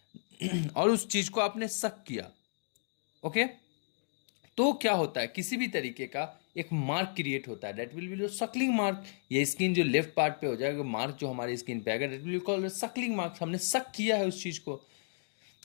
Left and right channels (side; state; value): right; silent; digital silence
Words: और उस चीज को आपने सक किया, ओके, तो क्या होता है, किसी भी तरीके का एक मार्क क्रिएट होता है, that will B Suckling mark. ये स्किन जो लेफ्ट पार्ट पे हो जाएगा, मार्क जो हमारी स्किन पे आएगा, that will called Suckling mark. हमने सक किया है उस चीज को